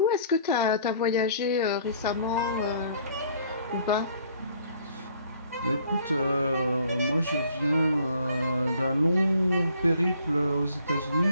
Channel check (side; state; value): both; inverted; correlation -0.59